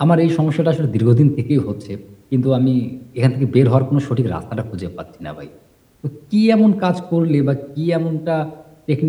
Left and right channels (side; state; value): both; identical; correlation 1.00